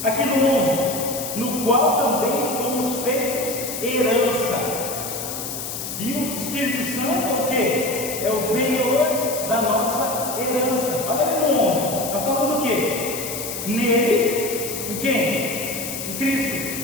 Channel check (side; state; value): left; noise; hiss, 6 dB below the sound